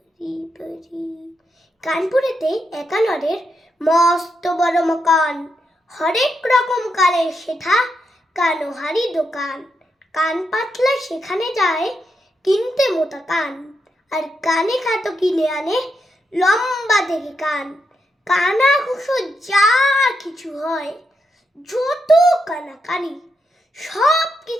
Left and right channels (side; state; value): both; normal; correlation 0.83